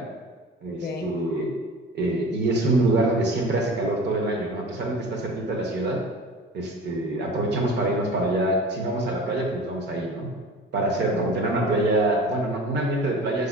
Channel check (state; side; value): normal; both; correlation 0.38